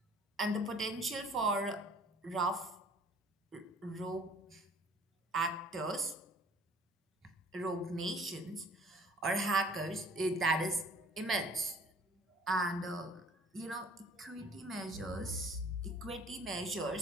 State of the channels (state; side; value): normal; both; correlation 0.53